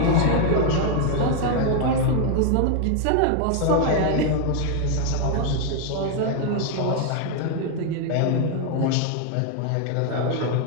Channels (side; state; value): both; different; correlation 0.00